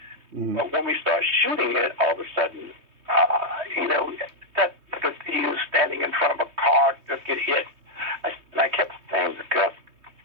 Mm. But when we started shooting it, all of a sudden, that he was standing in front of a car, just get hit. And I kept saying to Gus,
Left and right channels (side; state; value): left; late; 3.2 ms